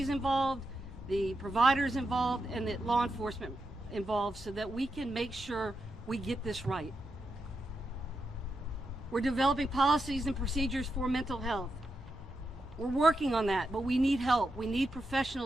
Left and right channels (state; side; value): normal; both; correlation 0.86